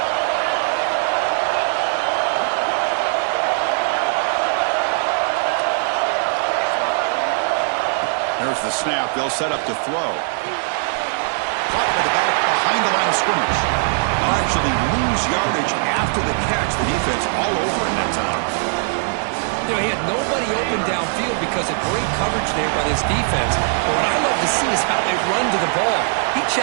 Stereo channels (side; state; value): left; silent; 66 dB below the other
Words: There's the snap. They'll set up to throw. Caught by the back behind the line of scrimmage. They'll actually lose yardage after the catch. The defense all over in that time. You know, he had nobody open downfield because of great coverage there by this defense. But what I love to see is how they run to the ball. He